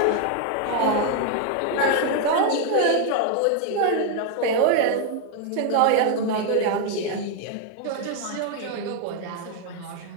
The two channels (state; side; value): different; both; correlation 0.00